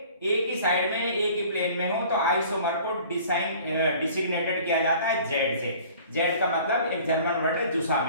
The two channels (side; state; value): both; inverted; correlation -0.49